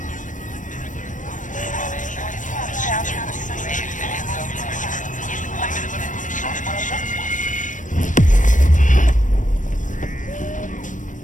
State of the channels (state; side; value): late; right; 0.37 ms